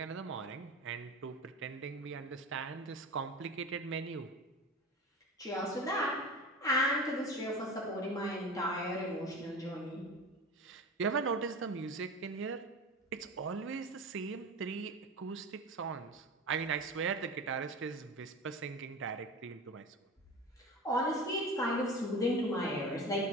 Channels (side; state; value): both; normal; correlation 0.31